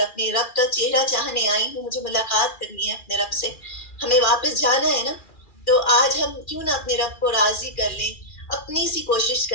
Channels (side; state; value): right; late; 2.4 ms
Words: رب کا چہرہ چاہنے آئی ہوں، مجھے ملاقات کرنی ہے اپنے رب سے، ہمیں واپس جانا ہے نا. تو آج ہم کیوں نہ اپنے رب کو راضی کر لیں، اپنی سی کوشش